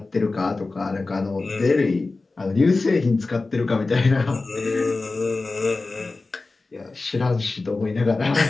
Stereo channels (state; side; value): quieter; right; 3.5 dB